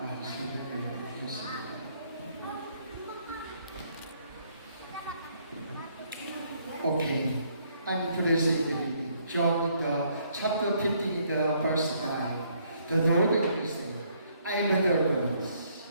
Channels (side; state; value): both; inverted; correlation -0.68